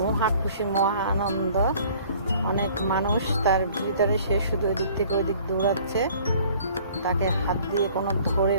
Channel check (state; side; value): inverted; both; correlation -0.53